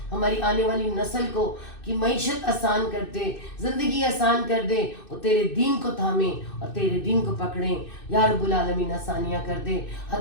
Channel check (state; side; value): late; right; 2.6 ms